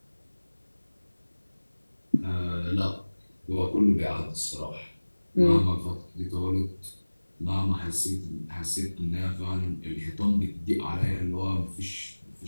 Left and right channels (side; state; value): both; inverted; correlation -1.00